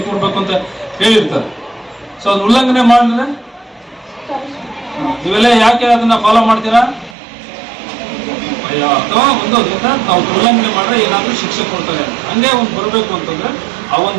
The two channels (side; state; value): left; drops out; at 7.2 s